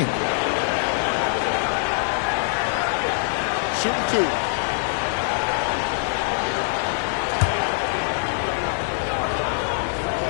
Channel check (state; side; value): silent; right; digital silence